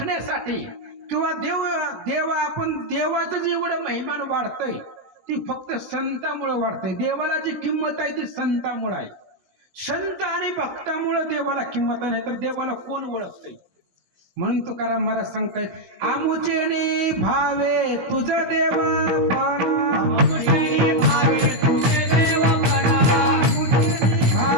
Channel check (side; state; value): left; late; 15 ms